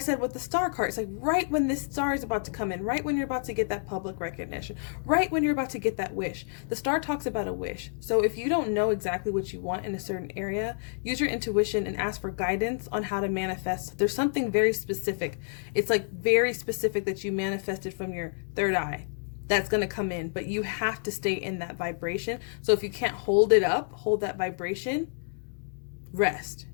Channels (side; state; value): right; silent; 59 dB below the other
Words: with the star card, it's like right when this star is about to come in, right when you're about to get that public recognition, right when you're about to get that wish. The star talks about a wish. So if you don't know exactly what you want in a certain area, use your intuition and ask for guidance on how to manifest. There's something very specific. It's like very specific that you manifested from your third eye that's going to come in, but you have to stay in that vibration. So if you can't hold it up, hold that vibration, rest.